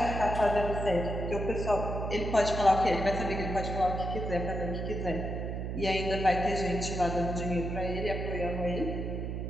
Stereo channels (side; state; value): right; noise; hum, 4 dB below the sound